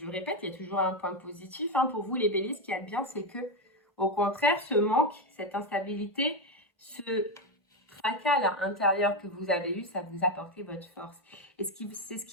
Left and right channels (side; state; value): both; normal; correlation 0.09